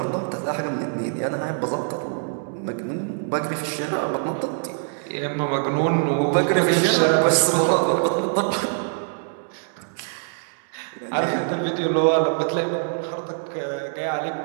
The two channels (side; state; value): left; silent; digital silence